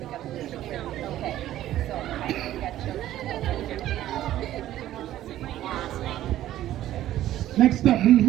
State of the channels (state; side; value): quieter; left; 13.3 dB